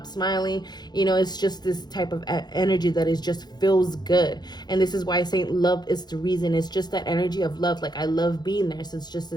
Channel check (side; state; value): right; late; 0.20 ms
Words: smiling. It's just this type of energy that is just feels good. And this is why I say love is the reason. It's just that energy of love. Like I love being there. So it's just